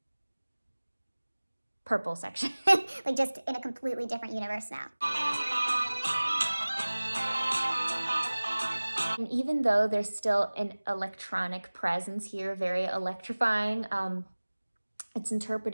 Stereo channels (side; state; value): both; inverted; correlation -1.00